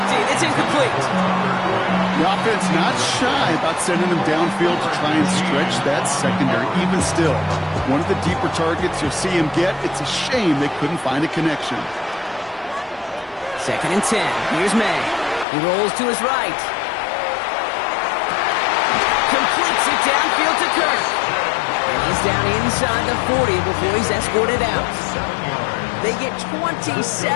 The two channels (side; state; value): right; drops out; at 15.5 s